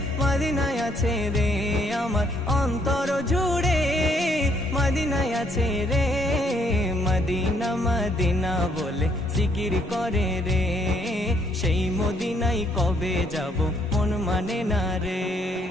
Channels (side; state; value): both; normal; correlation 0.69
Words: মদিনায় আছে রে, আমার অন্তর জুড়ে মদিনায় আছে রে। মদিনা মদিনা বলে জিকির করে রে, সেই মদিনায় কবে যাব মন মানে না রে।